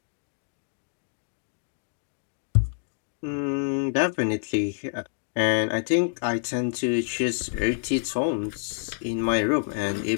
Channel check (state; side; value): silent; right; digital silence